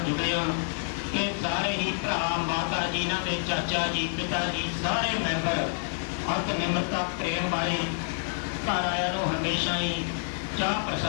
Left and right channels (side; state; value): right; silent; digital silence